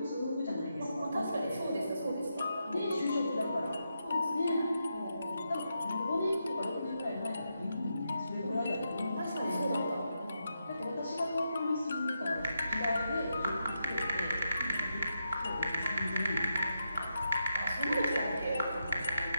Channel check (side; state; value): both; inverted; correlation -0.84